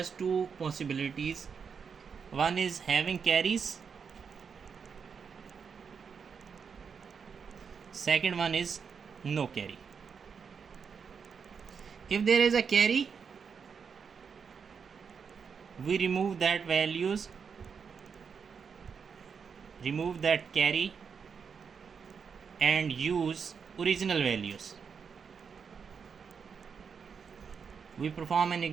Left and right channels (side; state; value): left; quieter; 6.2 dB